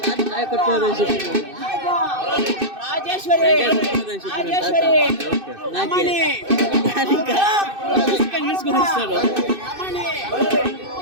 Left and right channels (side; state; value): left; late; 2.6 ms